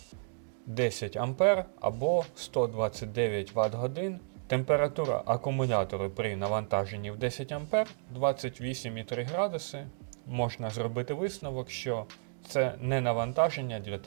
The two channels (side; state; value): left; silent; digital silence